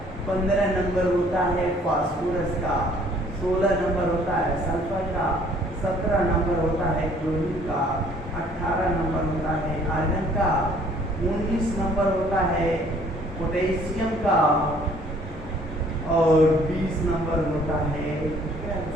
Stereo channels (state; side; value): normal; both; correlation 0.58